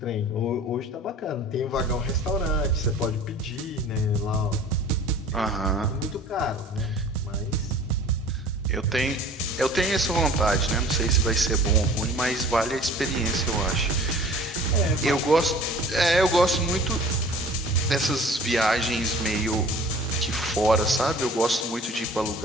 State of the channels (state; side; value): normal; both; correlation 0.46